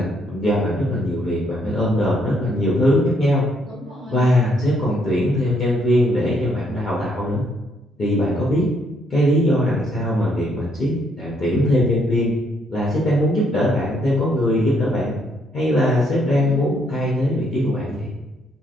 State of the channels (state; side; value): normal; both; correlation 0.71